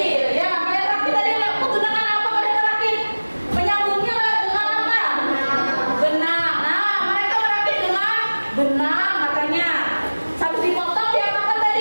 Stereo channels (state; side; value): inverted; both; correlation -1.00